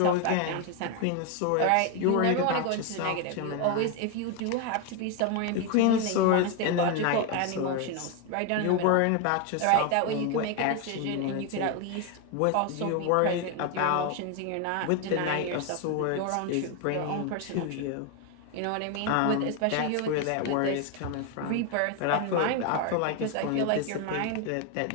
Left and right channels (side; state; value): both; different; correlation 0.01